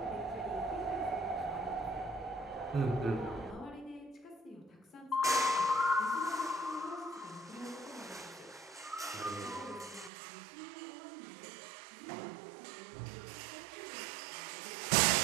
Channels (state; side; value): drops out; left; at 10.1 s